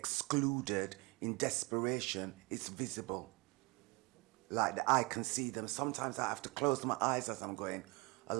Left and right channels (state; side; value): quieter; left; 26.9 dB